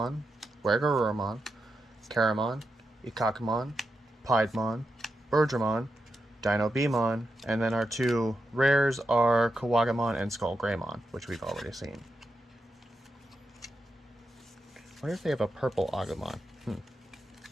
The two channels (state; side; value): normal; both; correlation 0.87